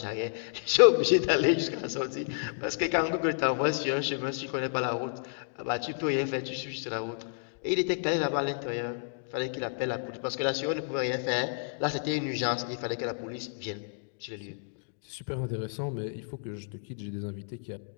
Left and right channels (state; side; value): silent; right; digital silence